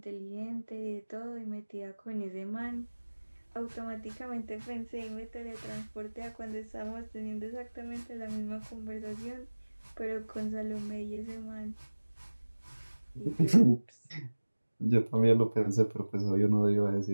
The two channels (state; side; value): inverted; both; correlation -1.00